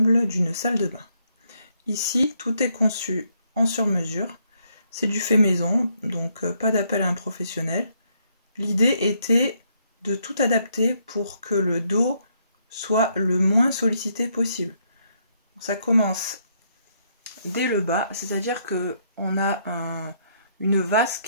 d'une salle de bain. Ici, tout est conçu en sur-mesure. C'est du fait maison, donc pas d'appel à un professionnel. L'idée était de tout adapter pour que le dos soit le moins sollicité possible. Ça commence dès le bas, c'est-à-dire qu'on a une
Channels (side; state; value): both; inverted; correlation -0.73